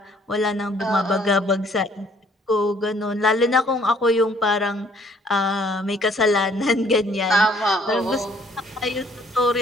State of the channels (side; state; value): both; normal; correlation 0.61